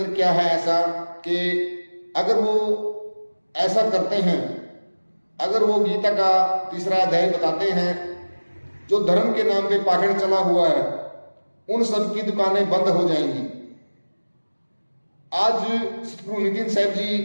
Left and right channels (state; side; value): inverted; both; correlation -1.00